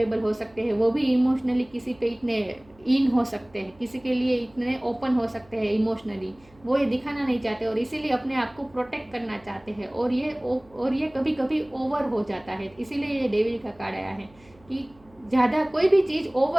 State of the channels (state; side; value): noise; right; hum, 29 dB below the sound